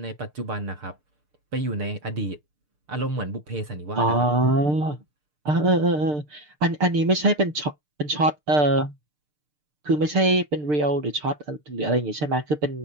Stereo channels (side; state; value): left; late; 6.7 ms